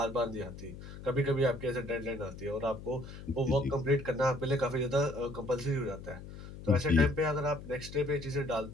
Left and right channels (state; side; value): noise; left; hum, 13 dB below the sound